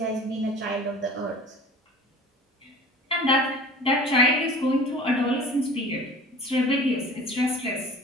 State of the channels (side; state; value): both; normal; correlation 0.43